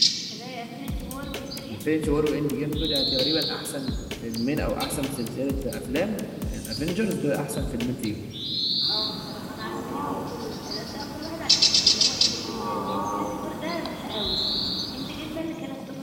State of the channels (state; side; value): identical; both; correlation 1.00